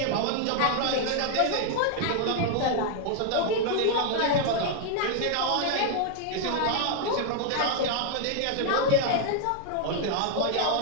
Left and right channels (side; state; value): both; different; correlation 0.00